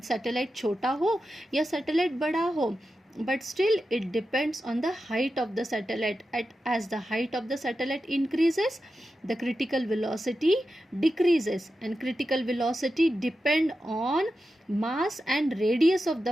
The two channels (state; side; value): normal; both; correlation 0.90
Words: satellite छोटा हो या satellite बड़ा हो, but still it depends on the height of the satellite. As the height of the satellite increases, the critical velocity decreases, and critical velocity depend on mass and radius of